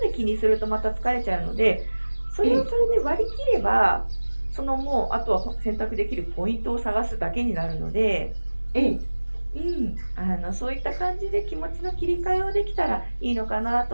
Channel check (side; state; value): both; inverted; correlation -1.00